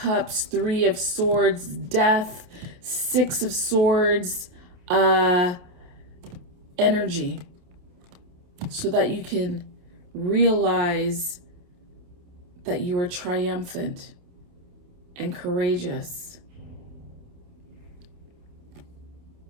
3 of Swords, Death, 6 of Swords, energy, so that you can realize that you are triumphant and courageous.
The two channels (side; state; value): left; late; 28 ms